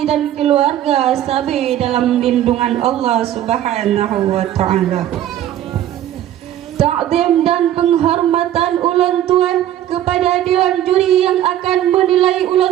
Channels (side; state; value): left; quieter; 12.0 dB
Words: dan keluarga sabi dalam lindungan Allah Subhanahu wa taala. Ta'zim dan penghormatan ulang tuan kepada dewan juri yang akan menilai